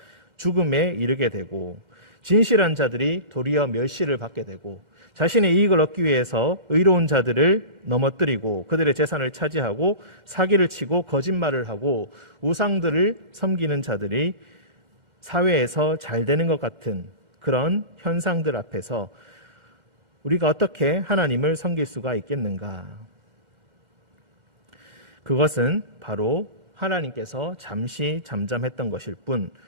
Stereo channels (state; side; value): late; left; 1.4 ms